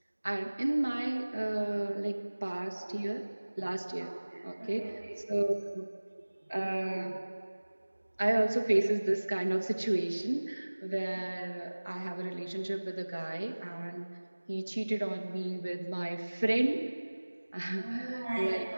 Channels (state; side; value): inverted; both; correlation -1.00